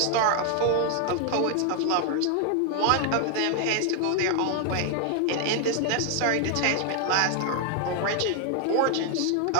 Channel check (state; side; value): different; both; correlation 0.00